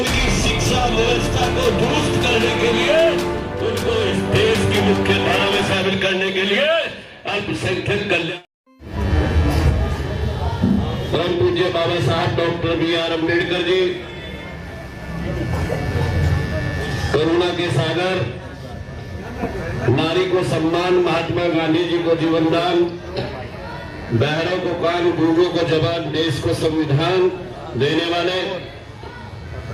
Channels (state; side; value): identical; both; correlation 1.00